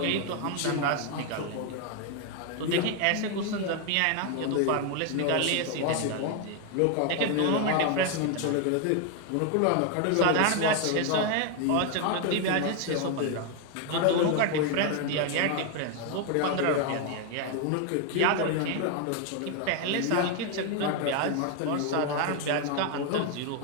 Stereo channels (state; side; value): different; both; correlation 0.01